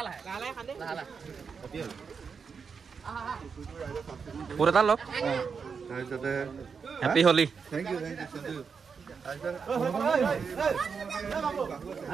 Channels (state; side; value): quieter; left; 5.8 dB